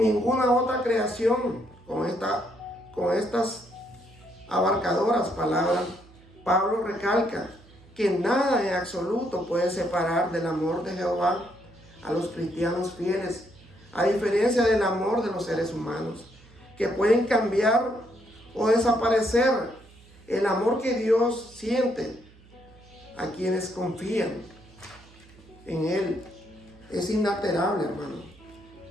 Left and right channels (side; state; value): right; noise; hum, 25 dB below the sound